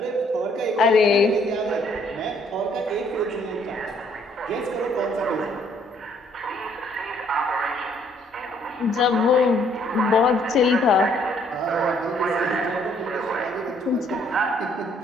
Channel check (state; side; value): normal; both; correlation 0.64